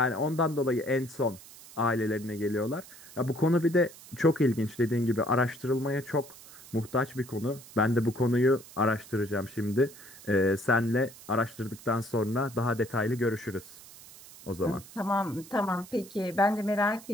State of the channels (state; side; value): noise; right; hiss, 19 dB below the sound